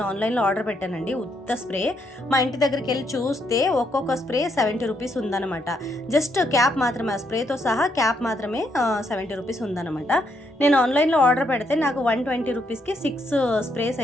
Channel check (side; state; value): both; normal; correlation 0.75